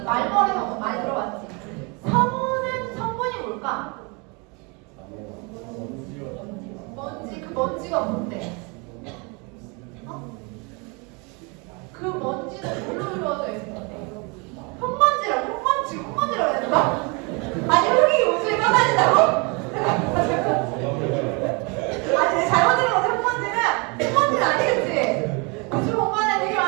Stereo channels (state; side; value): quieter; left; 30.8 dB